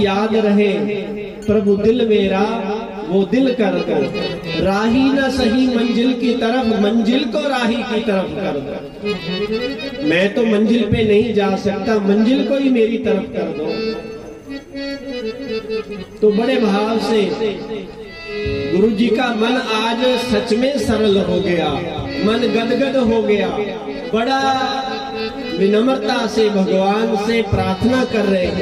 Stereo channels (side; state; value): both; identical; correlation 1.00